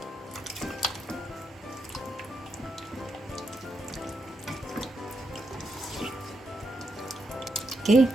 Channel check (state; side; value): normal; both; correlation 0.82